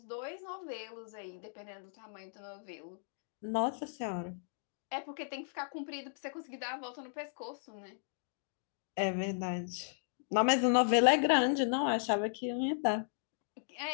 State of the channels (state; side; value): silent; right; digital silence